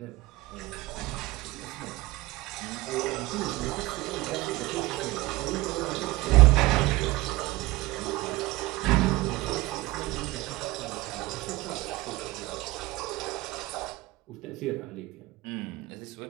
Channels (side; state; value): left; quieter; 19.9 dB